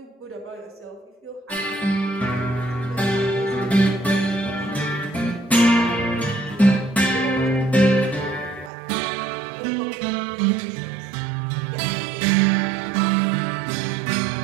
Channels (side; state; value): left; drops out; at 8.7 s